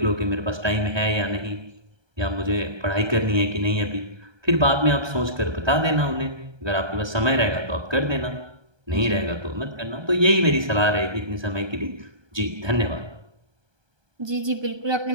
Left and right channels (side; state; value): left; late; 1.2 ms